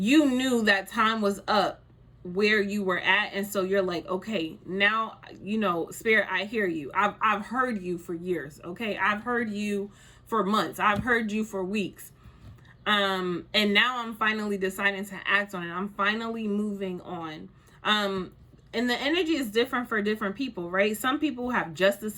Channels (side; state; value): both; identical; correlation 1.00